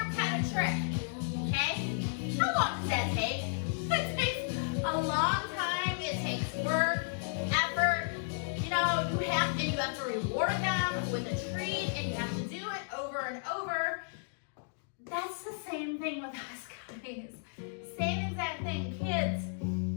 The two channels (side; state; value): right; silent; digital silence